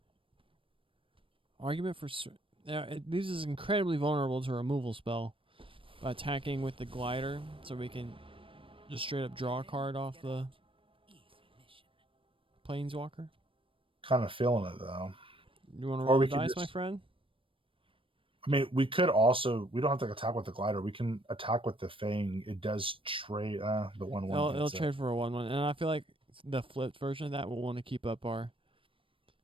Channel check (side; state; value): left; late; 0.25 ms